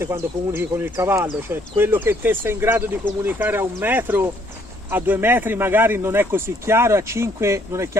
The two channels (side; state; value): both; normal; correlation 0.66